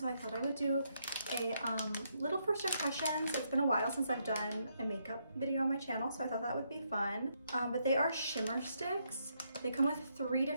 I thought I would do a little first impressions. It's been a while since I've done a makeup video on my channel, so I thought that would be fun. But they are shimmer sticks. They come with 3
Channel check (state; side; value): inverted; both; correlation -0.76